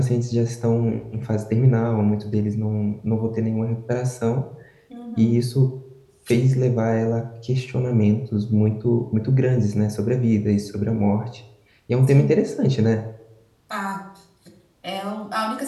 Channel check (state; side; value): identical; both; correlation 1.00